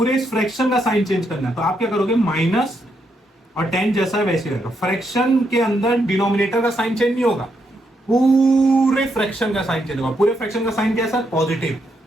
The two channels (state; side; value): normal; both; correlation 0.79